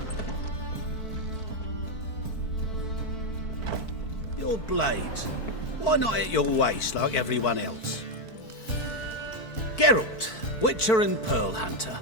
Your blades. Why not at your waist like everyone else? Geralt, Witcher and Pearl Hunter.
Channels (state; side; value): late; right; 4.5 ms